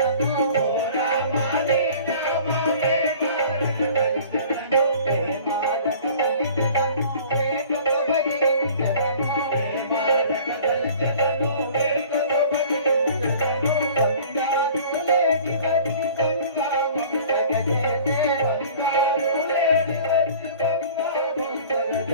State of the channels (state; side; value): inverted; both; correlation -0.46